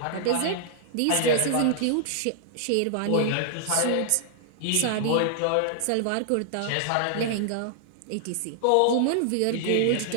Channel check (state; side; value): different; both; correlation 0.00